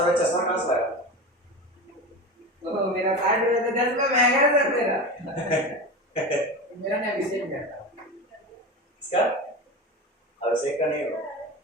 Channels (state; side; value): normal; both; correlation 0.26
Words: का चश्मा कहाँ से लाया? तो मेरा 60 रुपए तो 10 रुपए महंगा है सर मेरा। मेरा ना अभिषेक करता इसका अभिषेक का नहीं होगा।